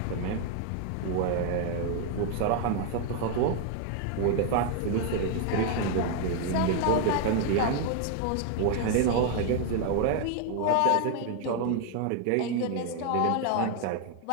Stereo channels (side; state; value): both; different; correlation 0.00